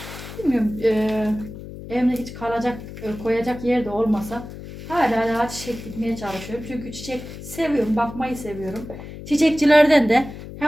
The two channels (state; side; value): noise; left; hum, 12 dB below the sound